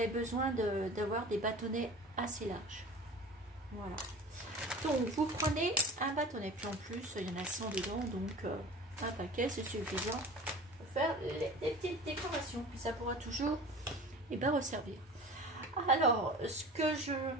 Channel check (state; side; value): normal; both; correlation 0.38